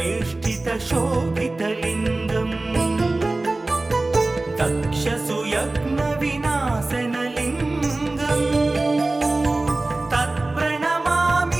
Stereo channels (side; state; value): left; quieter; 3.0 dB